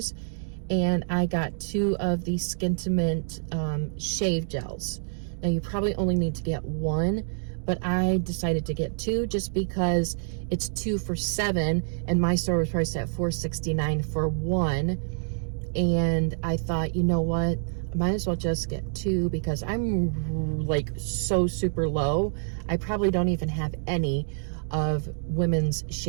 and I got 2 of the Skintimate shave gels. Now you probably only need to get 1, but I decided to get 2 just because it's 2 for $7, and my store was priced at $4.69 for 1. And I thought, you know what, I might as well just get 2 because I'm like so super low. I probably don't even have any of women's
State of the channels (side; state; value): left; silent; digital silence